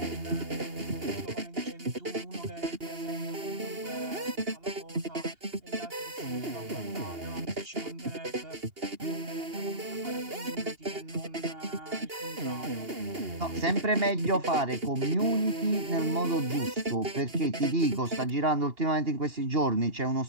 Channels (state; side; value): late; left; 2.8 ms